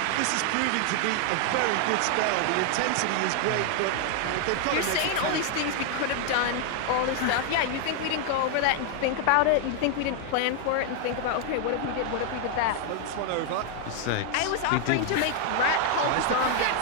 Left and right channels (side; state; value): both; different; correlation 0.00